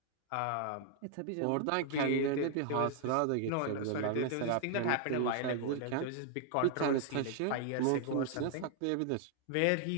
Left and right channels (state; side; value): different; both; correlation 0.00